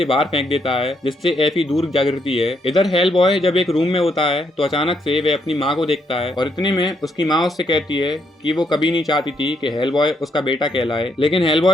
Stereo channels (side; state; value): both; normal; correlation 0.75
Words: बाहर फेंक देता है, जिससे एफी दूर जा गिरती है। इधर हेल बॉय जब एक रूम में होता है तो अचानक से वह अपनी माँ को देखता है और इतने में उसकी माँ उससे कहती है कि वो कभी नहीं चाहती थी कि हेल बॉय उसका बेटा कहलाए, लेकिन हेल